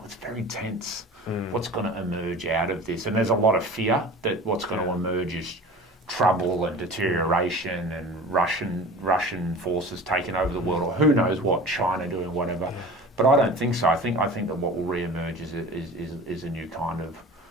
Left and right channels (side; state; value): both; normal; correlation 0.38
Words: very tense. What's going to emerge out of this? And there's a lot of fear that what's going to emerge is trouble and deterioration and Russian forces taking over the world, or who knows what, China doing whatever. But I don't think so. I think that what will re-emerge is a new kind of